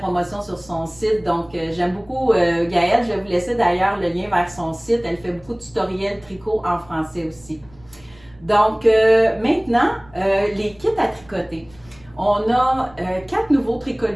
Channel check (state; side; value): noise; right; rumble, 26 dB below the sound